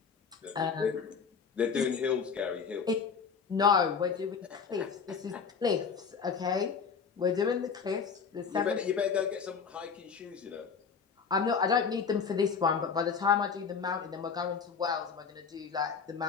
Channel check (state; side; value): quieter; right; 6.0 dB